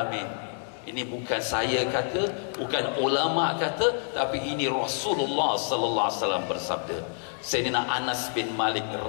Ini bukan saya kata, bukan ulama kata, tapi ini Rasulullah sallallahu alaihi wasallam bersabda. Sayyidina Anas bin Malik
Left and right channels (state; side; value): silent; right; 60 dB below the other